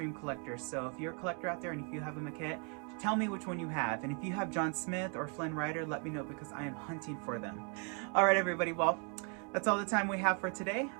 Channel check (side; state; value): left; quieter; 38.2 dB